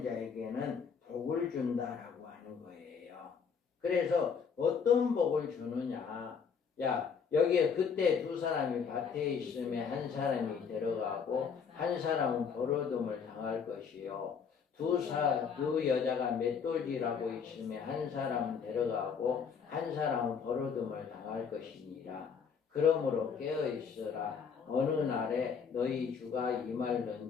자에게는 복을 준다라고 하는 거예요. 그래서 어떤 복을 주느냐? 야, 여기에 그때 두 사람이 밭에 있으면 한 사람이 데려가고 한 사람은 버러움을 당할 것이요. 두 여자가 맷돌질하고 있으면 한 사람은 데려가고 한 사람은 버러움을 당할 것이니라. 그러므로 깨어 있으라. 어느 날에 너희 주가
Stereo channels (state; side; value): quieter; right; 6.3 dB